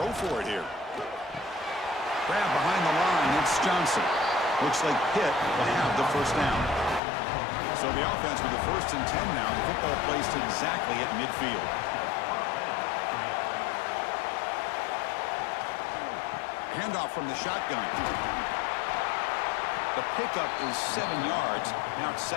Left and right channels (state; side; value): drops out; right; at 7.0 s